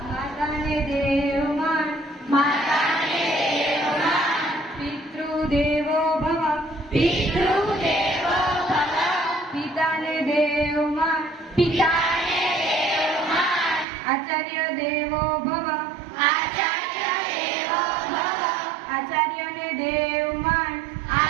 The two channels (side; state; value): left; drops out; at 13.9 s